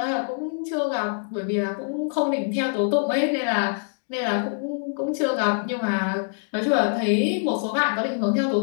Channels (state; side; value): silent; right; digital silence